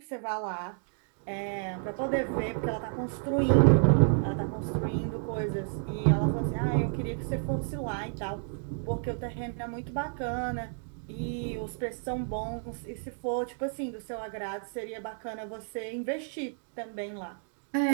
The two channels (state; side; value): silent; left; 57 dB below the other